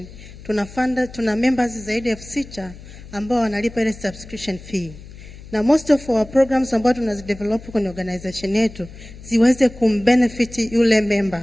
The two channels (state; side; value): noise; left; hum, 17 dB below the sound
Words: Tuna members zaidi ya 6,000 ambao wanalipa ile subscription fee. Na most of our programs ambao tunazidevelop kwenye organization yetu ziweze kumbenefit yule